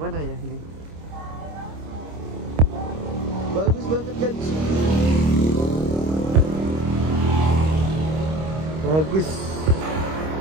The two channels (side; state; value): left; late; 26 ms